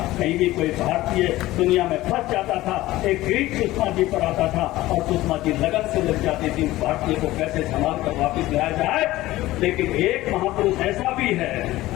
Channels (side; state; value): right; quieter; 17.0 dB